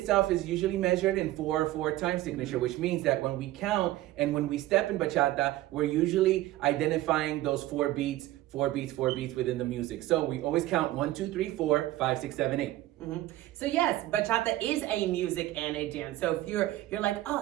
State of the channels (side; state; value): left; quieter; 15.8 dB